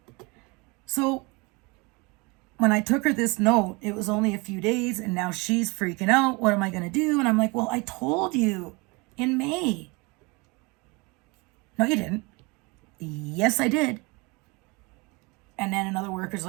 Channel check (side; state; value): left; quieter; 27.1 dB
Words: So when I took her this note, it was only a few days, and now she's freaking out. What am I going to do? And I'm like, well, I told you in May. No, you didn't. Yes, I did. And then another worker's